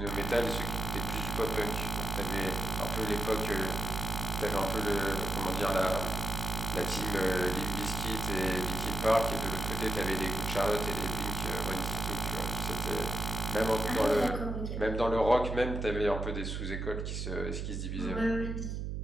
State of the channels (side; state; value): right; noise; hum, 3 dB below the sound